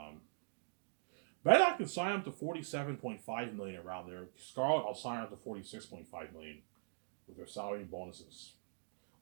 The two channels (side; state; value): left; silent; digital silence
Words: I can sign up to 47.5 million around there. Scarlett, I'll sign up to 46.5 million with their salary and bonuses.